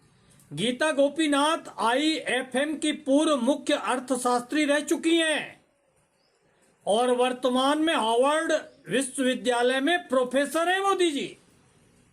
गीता गोपीनाथ IIFM की पूर्व मुख्य अर्थशास्त्री रह चुकी हैं और वर्तमान में हार्वर्ड विश्वविद्यालय में प्रोफेसर हैं मोदी जी।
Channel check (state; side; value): identical; both; correlation 1.00